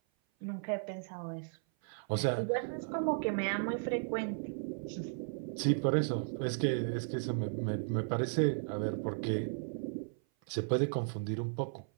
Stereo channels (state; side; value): silent; left; 54 dB below the other